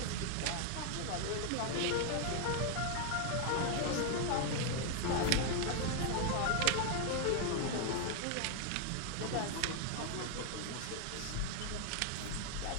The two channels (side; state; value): both; different; correlation 0.00